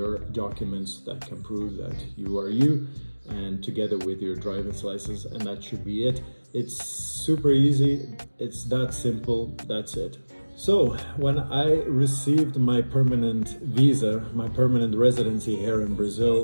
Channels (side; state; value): both; inverted; correlation -1.00